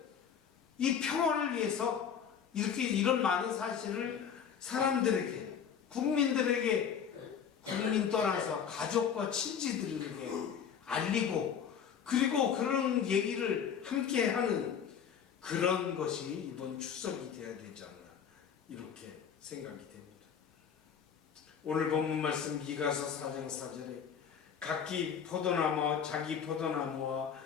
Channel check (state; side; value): quieter; right; 7.7 dB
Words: 이 평화를 위해서 이렇게 이런 많은 사실을 사람들에게 국민들에게 국민 떠나서 가족과 친지들에게 알리고 그리고 그런 얘기를 함께 하는 그런 것이 이번 추석이 되어야 되지 않나 이렇게 생각이 됩니다. 오늘 본문 말씀 미가서 4장 4절에 각기 포도나무와 자기 포도나무와